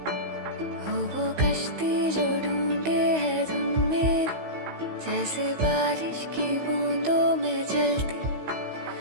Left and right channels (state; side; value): late; left; 16 ms